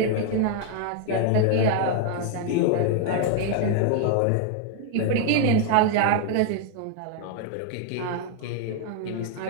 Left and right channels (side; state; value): both; different; correlation 0.00